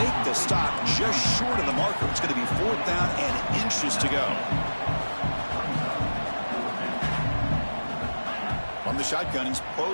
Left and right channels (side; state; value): both; inverted; correlation -1.00